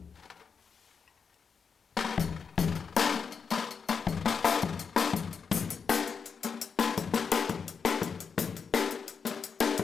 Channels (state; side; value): quieter; right; 5.9 dB